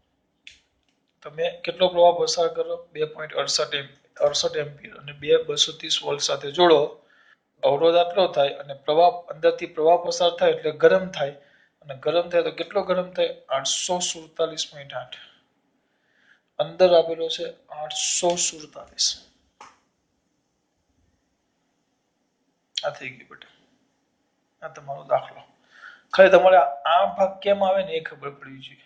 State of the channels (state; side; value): identical; both; correlation 1.00